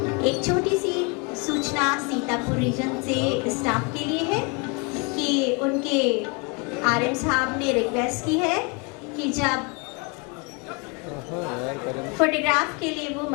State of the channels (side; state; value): right; quieter; 31.0 dB